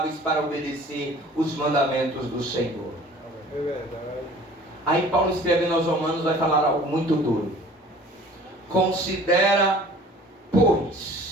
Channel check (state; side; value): normal; both; correlation 0.48